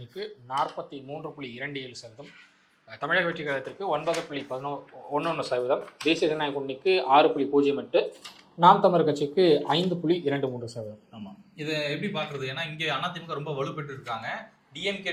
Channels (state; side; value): identical; both; correlation 1.00